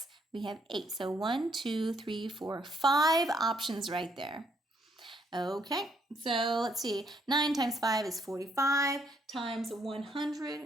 we have 8. So 1, 2, 3, 4, 5 options right there. Okay, so let's see. 9 times 5 is 45, times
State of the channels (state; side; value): normal; both; correlation 0.70